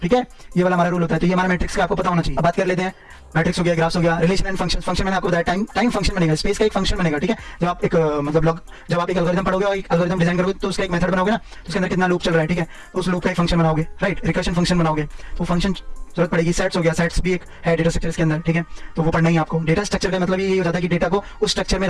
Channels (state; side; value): identical; both; correlation 1.00